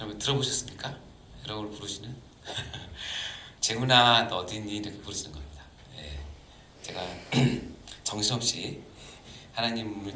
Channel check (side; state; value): both; identical; correlation 1.00